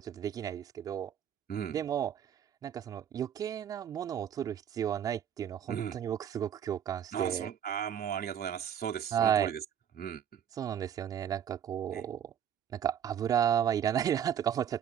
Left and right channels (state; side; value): quieter; left; 9.2 dB